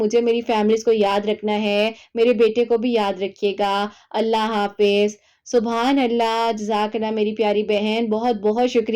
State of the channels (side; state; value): both; identical; correlation 1.00